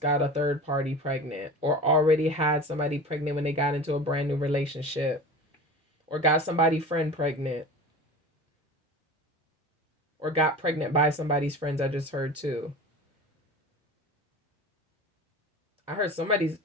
got a third party pregnant or already had somebody pregnant when they got into a brand new relationship or got somebody friend pregnant or got pregnant by somebody's friends. I just heard too. I heard somebody's,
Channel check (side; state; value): both; normal; correlation 0.34